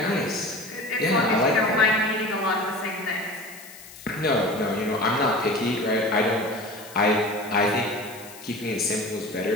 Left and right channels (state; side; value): noise; left; hiss, 18 dB below the sound